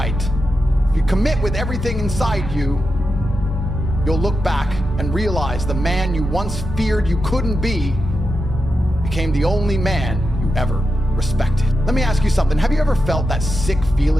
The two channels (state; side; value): normal; both; correlation 0.88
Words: if you commit with everything inside you, you'll look back and realize the man you once feared you couldn't be became the only man you ever respected. Let me ask you something. Have you ever felt that sick